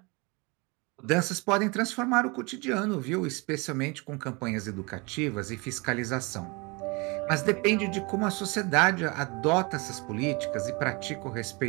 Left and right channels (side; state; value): left; quieter; 28.2 dB